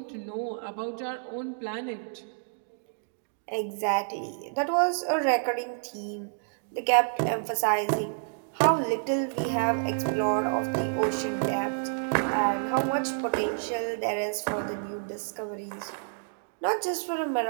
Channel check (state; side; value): silent; left; digital silence